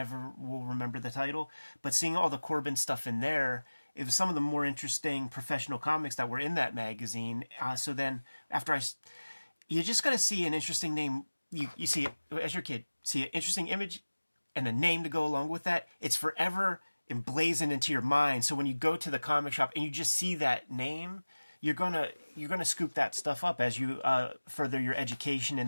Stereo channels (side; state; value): both; inverted; correlation -1.00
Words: will remember the title, but seeing all the Corben stuff in there, it was some of the more interesting professional comics that were in that magazine. So then after you just got to see an interesting name. You see it as your kid, see an interesting image and a name to go along with that. It's forever emblazoned into your mind. So when you go to the comic shop and you just see that name, you're gonna scoop that stuff up as you further your education